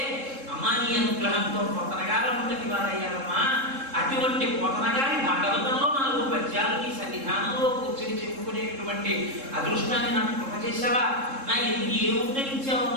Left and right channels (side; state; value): left; late; 3.7 ms